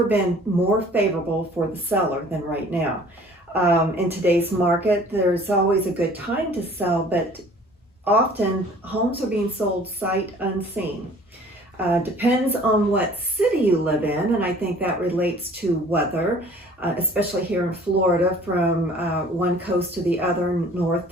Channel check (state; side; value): normal; both; correlation 0.51